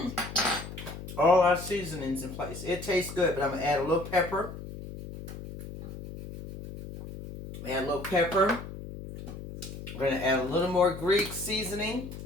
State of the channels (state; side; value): noise; left; hum, 11 dB below the sound